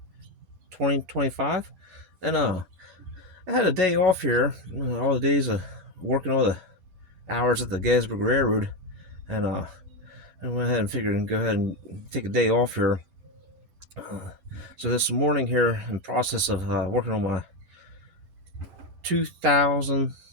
2025, and I had a day off here. All the days of working all the hours at the Gettysburg Railroad, and I went ahead and figured and go ahead and take a day off here. So this morning here, in process of working on my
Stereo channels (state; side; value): late; left; 10 ms